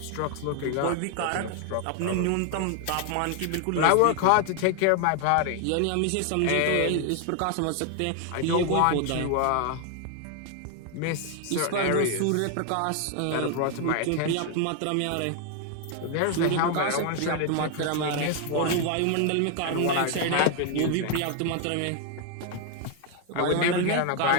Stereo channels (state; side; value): different; both; correlation 0.00